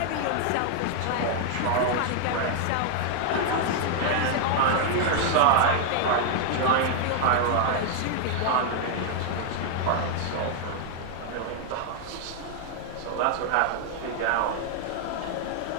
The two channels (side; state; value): both; different; correlation 0.00